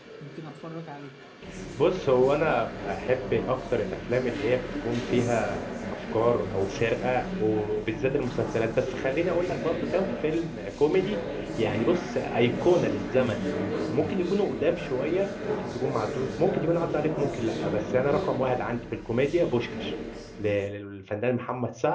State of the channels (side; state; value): both; identical; correlation 1.00